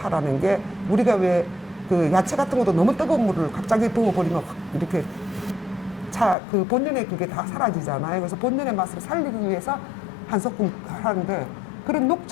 게 우리가 왜 그 야채 같은 것도 너무 뜨거운 물을 갑자기 부어버리면 확 이렇게 그 본연의 그게 다 사라지잖아요. 그래서 본연의 맛을 살리기 위해서 한 소끔 하는데 그런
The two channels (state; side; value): drops out; right; at 6.4 s